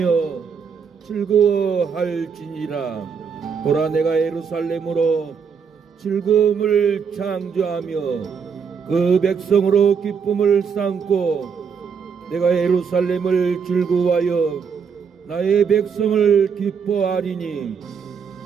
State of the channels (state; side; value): quieter; left; 6.3 dB